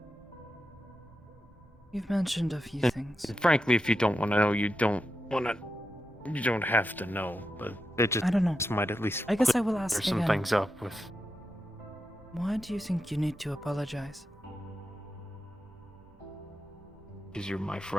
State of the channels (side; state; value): both; normal; correlation 0.87